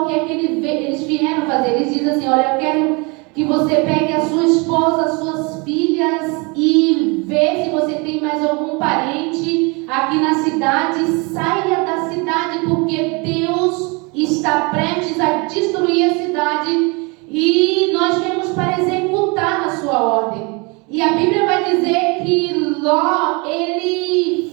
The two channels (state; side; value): quieter; left; 29.6 dB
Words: o que é que eles vieram fazer. Eles dizem assim: olha, eu quero que você pegue a sua esposa, as suas filhas e vê se você tem mais algum parente aqui na cidade. Saia da cidade, porque Deus está prestes a destruir a cidade e nós viemos para executar a sua ordem. E a Bíblia vai dizer que Ló, ele